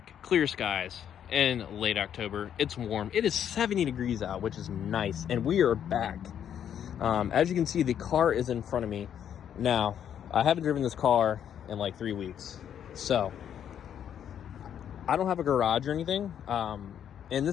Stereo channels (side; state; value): right; quieter; 9.3 dB